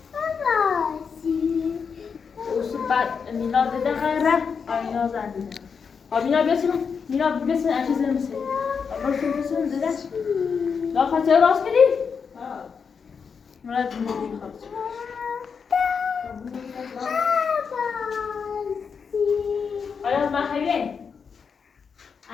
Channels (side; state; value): right; quieter; 6.0 dB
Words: بعد مینا دیده غیره آینا زنده مینا بیاسیم مینا بیاسیم اچه زنم سی برسیم بیاسیم دیده لا خطه راست کردی؟ مرد میگی خطه آیا ما خیلی؟